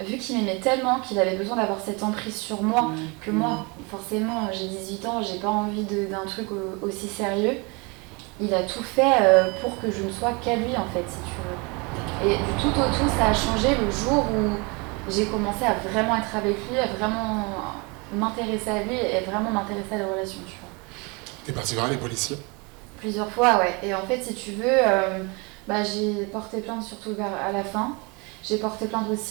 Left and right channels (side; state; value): left; quieter; 29.3 dB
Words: qu'il m'aimait tellement qu'il avait besoin d'avoir cette emprise sur moi, que moi, forcément, j'ai 18 ans, j'ai pas envie d'un truc aussi sérieux. Il a tout fait pour que je ne sois qu'à lui en fait, si tu veux. Et du tout au tout, ça a changé le jour où j'ai commencé à vraiment être avec lui, à vraiment m'intéresser à lui et vraiment m'intéresser à la relation, tu vois. T'es parti voir les policiers? Plusieurs fois, ouais. Et en fait, si tu veux, j'ai porté plainte surtout à la fin. J'ai porté plainte